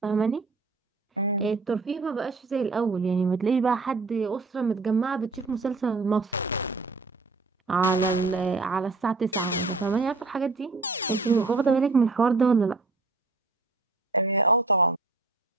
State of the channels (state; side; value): quieter; left; 3.7 dB